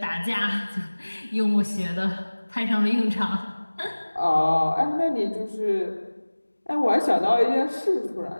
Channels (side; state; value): both; inverted; correlation -1.00